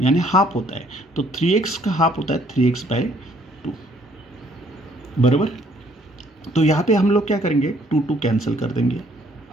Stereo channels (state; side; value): normal; both; correlation 0.64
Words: यानी हाफ होता है, तो 3x का हाफ होता है 3x बाय 2 बराबर। तो यहाँ पे हम लोग क्या करेंगे, 2 कैंसिल कर देंगे